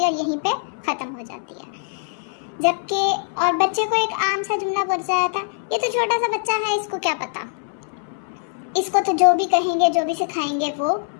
है और यहीं पे ख़त्म हो जाती है। जबकि और बच्चे को एक आम सा जुमला बोल जाया था, ये तो छोटा सा बच्चा है, इसको क्या पता, इसको तो जो भी कहेंगे जो भी सिखाएंगे वो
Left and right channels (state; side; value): silent; right; 64 dB below the other